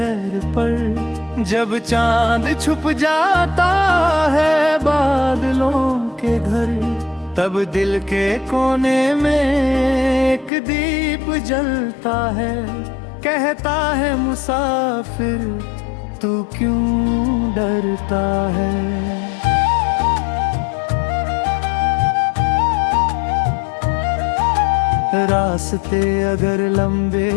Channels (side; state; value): right; drops out; at 10.5 s